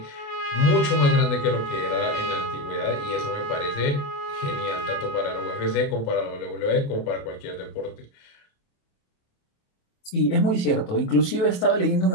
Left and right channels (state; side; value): late; right; 28 ms